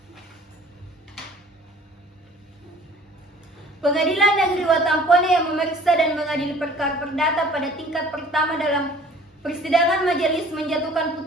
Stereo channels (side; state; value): both; normal; correlation 0.50